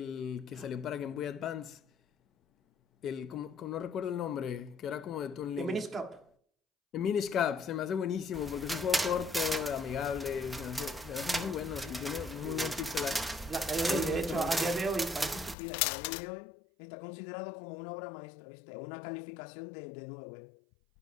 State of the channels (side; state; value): right; drops out; at 15.6 s